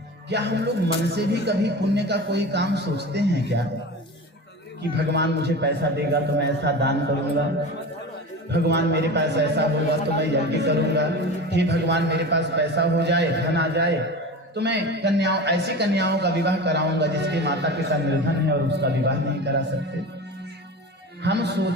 क्या हम लोग मन से भी कभी पुण्य का कोई काम सोचते हैं क्या? कि भगवान मुझे पैसा देगा तो मैं ऐसा दान करूंगा, भगवान मेरे पास ऐसा होगा तो मैं यज्ञ करूंगा, हे भगवान मेरे पास पैसा हो जाए, धन आ जाए तो मैं ऐसी कन्याओं का विवाह कराऊंगा जिसके माता पिता निर्धन है और उसका विवाह नहीं करा सकते। हम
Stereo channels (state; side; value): normal; both; correlation 0.31